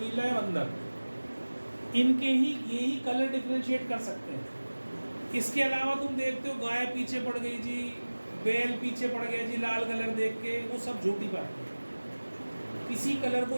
या बंदर, इनके ही यही कलर डिफरेंशिएट कर सकते हैं। इसके अलावा तुम देखते हो गाय पीछे पड़ गई जी, बैल पीछे पड़ गया जी लाल कलर देख के, वो सब झूठी बात है। किसी कलर को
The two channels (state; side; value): inverted; both; correlation -1.00